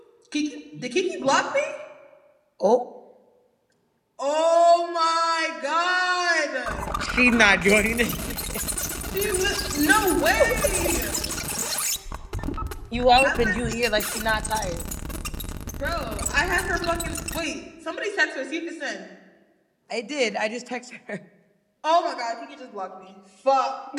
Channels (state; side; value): identical; both; correlation 1.00